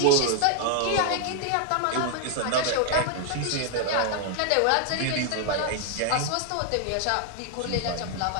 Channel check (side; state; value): both; different; correlation 0.00